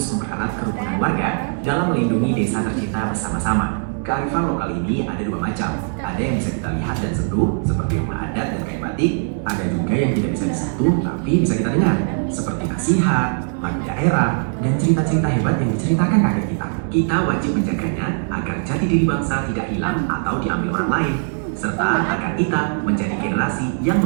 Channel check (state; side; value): silent; left; 65 dB below the other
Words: mempererat kerukunan warga dalam melindungi desa tercinta bersama-sama. Kearifan lokal ini ada dua macam. Ada yang bisa kita lihat dan sentuh, seperti rumah adat dan kain batik. Ada juga yang tidak bisa disentuh, tapi bisa kita dengar, seperti nasihat, lagu daerah, dan cerita-cerita hebat yang diceritakan kakek kita. Kita wajib menjaganya agar jati diri bangsa tidak hilang atau diambil orang lain, serta agar kita menjadi generasi yang